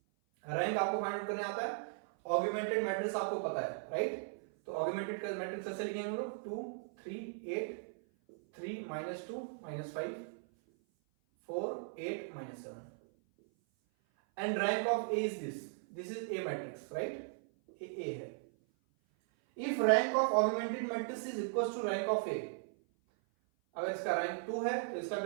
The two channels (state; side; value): silent; left; 53 dB below the other